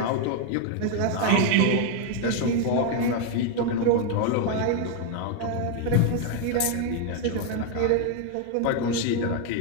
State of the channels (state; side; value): different; both; correlation 0.01